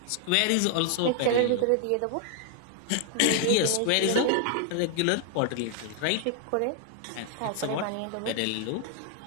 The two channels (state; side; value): different; both; correlation 0.00